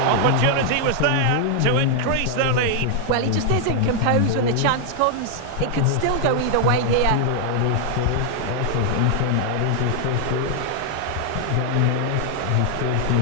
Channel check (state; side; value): different; both; correlation 0.00